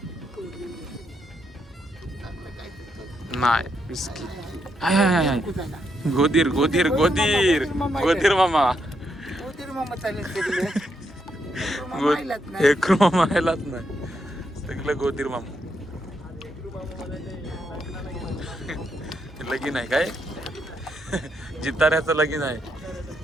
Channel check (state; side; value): normal; both; correlation 0.79